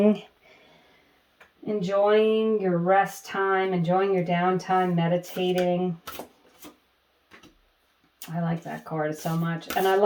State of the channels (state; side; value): identical; both; correlation 1.00